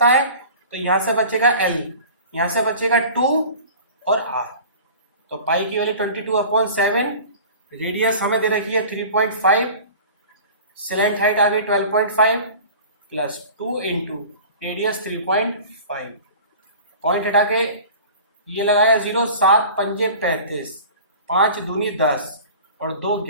है, तो यहाँ से बचेगा एल, यहाँ से बचेगा 2 और आर। तो पाई की वैल्यू 22/7, रेडियस हमें दे रखी है 3.5, स्लैंट हाइट आ गई 12.5 प्लस 2 इंटू रेडियस 3.5, पॉइंट हटा के ये लगाया 0, 7 पंजे 35, 5 दूनी 10 और 2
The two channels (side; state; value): both; inverted; correlation -0.41